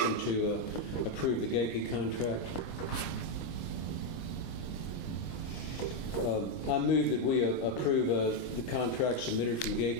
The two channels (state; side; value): late; right; 25 ms